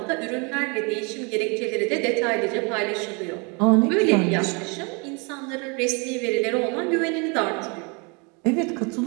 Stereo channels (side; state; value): left; quieter; 32.1 dB